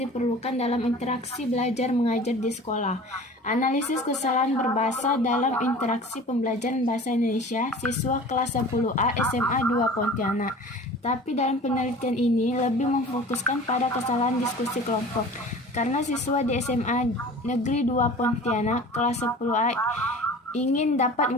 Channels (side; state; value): both; normal; correlation 0.41